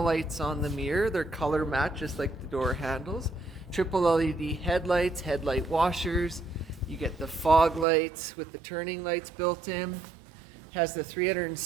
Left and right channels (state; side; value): drops out; left; at 7.9 s